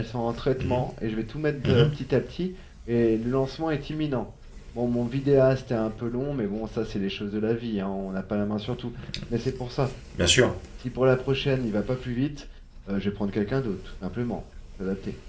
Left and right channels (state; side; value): identical; both; correlation 1.00